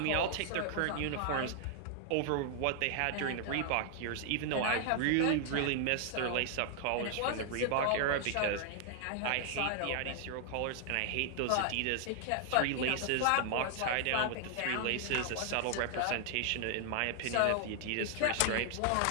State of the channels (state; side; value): different; both; correlation 0.00